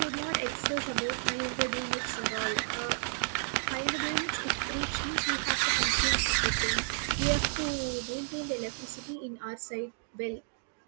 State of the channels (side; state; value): left; silent; 57 dB below the other